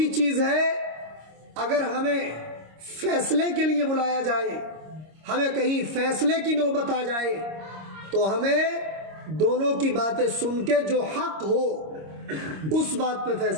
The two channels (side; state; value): left; late; 26 ms